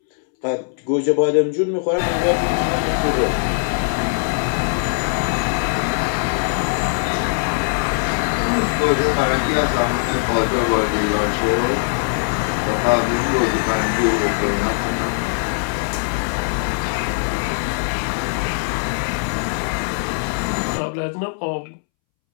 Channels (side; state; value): right; silent; 65 dB below the other